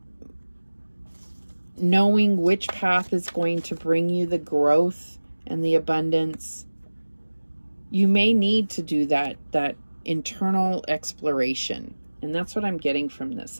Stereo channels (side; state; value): both; inverted; correlation -1.00